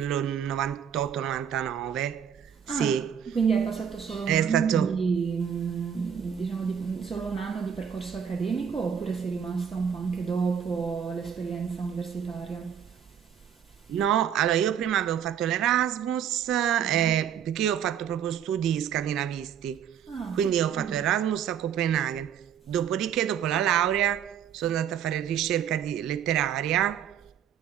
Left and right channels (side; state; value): left; quieter; 8.6 dB